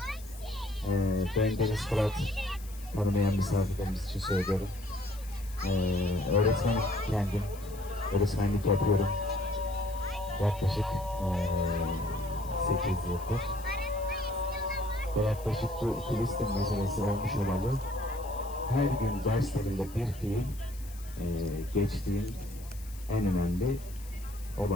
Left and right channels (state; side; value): noise; left; hiss, 19 dB below the sound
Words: Ben Deniz Fırat, tanımayan misafirlerimiz için söylüyorum. Öğretmenim kendim, öğretmenlik yapıyorum. Yaklaşık 8 yıldır. Ve yaklaşık bu Filistin meselesi olmuş olalı her gün derslerinde bir fiil geçtiğim en önemli